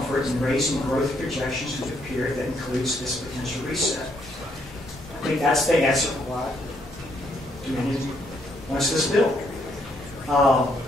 in raising growth projections to a period that includes this potential reset. I think that's the answer for why Dominion wants this bill.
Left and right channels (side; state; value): both; normal; correlation 0.72